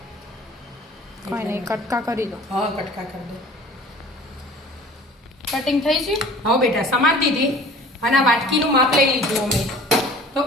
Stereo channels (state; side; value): normal; both; correlation 0.46